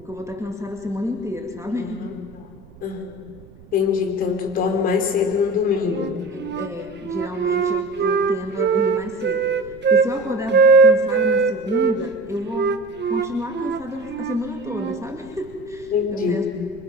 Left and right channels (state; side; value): noise; right; rumble, 23 dB below the sound